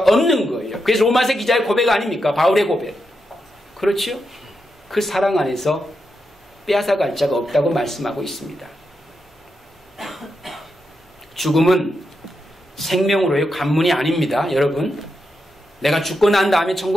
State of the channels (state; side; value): normal; both; correlation 0.85